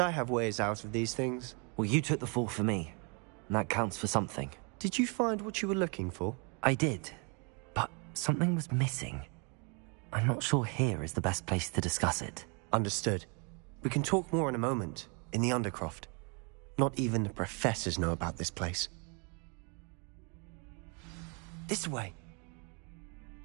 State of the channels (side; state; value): left; quieter; 34.8 dB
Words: have ways out of these things. Well, you took the fall for me, and that counts for something. Did you find what you were looking for? I did, but something was missing. I'm not sure here is the best place to discuss it. Understood. We can talk more in a moment, in the Undercroft. Not even the professors know about this place. This way.